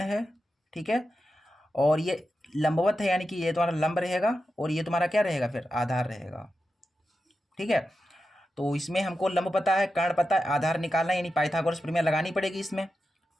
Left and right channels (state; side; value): normal; both; correlation 0.90